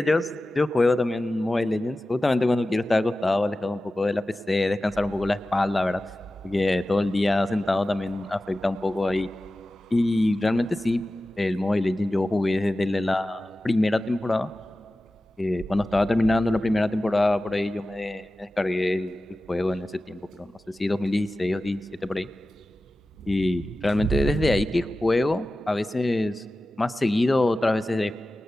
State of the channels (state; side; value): normal; both; correlation 0.95